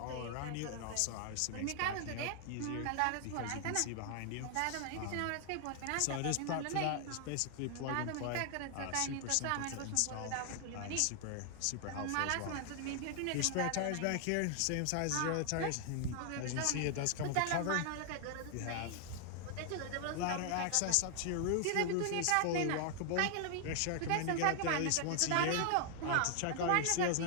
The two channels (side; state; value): both; different; correlation 0.00